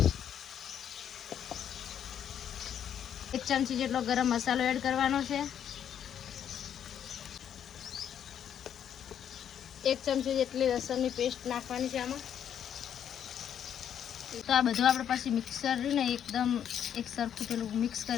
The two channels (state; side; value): quieter; right; 9.2 dB